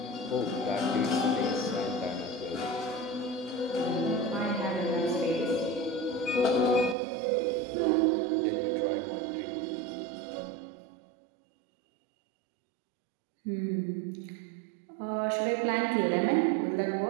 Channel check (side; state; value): left; drops out; at 7.0 s